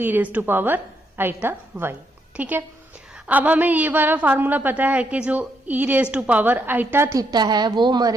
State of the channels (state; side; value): normal; both; correlation 0.77